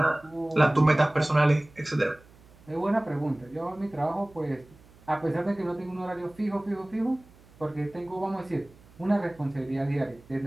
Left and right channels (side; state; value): right; noise; hum, 26 dB below the sound